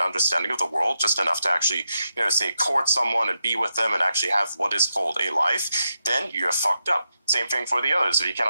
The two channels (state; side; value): inverted; both; correlation -0.85